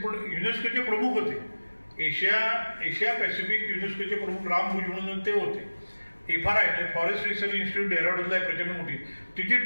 युनेस्कोचे प्रमुख होते, एशिया पॅसिफिक युनेस्कोचे प्रमुख राम भुज म्हणून ते होते. FRI फॉरेस्ट रिसर्च इन्स्टिट्यूट डेहराडूनला आहे प्रचंड मोठी, तिचे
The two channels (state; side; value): inverted; both; correlation -1.00